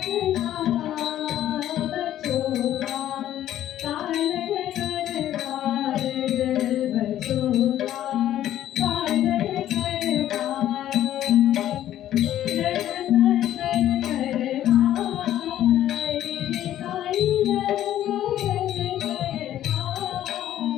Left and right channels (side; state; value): right; quieter; 12.3 dB